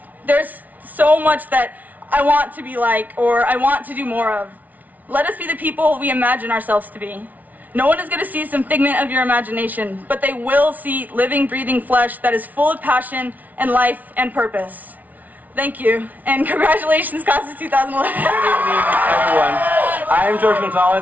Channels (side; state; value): left; late; 0.076 ms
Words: There's so much that I want to be like, or I want to do more of. Let us be the people we imagine ourselves to be. No one is going to see some figment of your imagination, but they will see living, breathing flesh that is full of passion and life and purpose. Thank you, and congratulations, class of 2011. Good evening, everyone. I am George